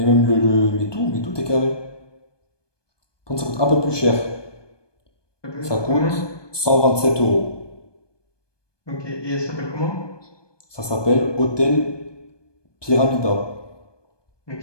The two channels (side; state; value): right; late; 1.2 ms